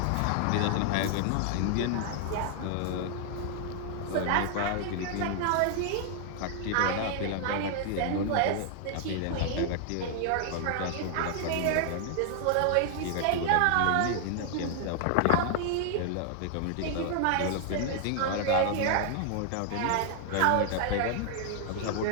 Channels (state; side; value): different; both; correlation 0.00